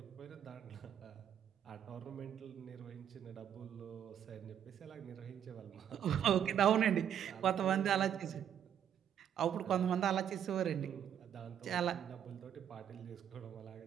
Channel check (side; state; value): left; quieter; 9.4 dB